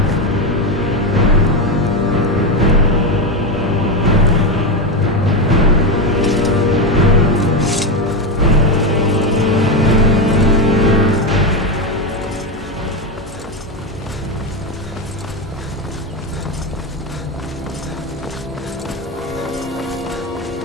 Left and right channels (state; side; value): normal; both; correlation 0.12